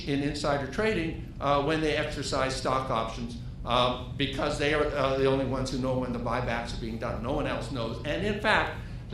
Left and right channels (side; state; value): both; identical; correlation 1.00